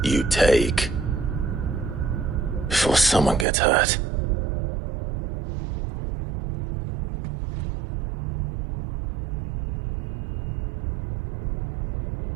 you take before someone gets hurt.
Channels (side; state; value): left; drops out; at 3.5 s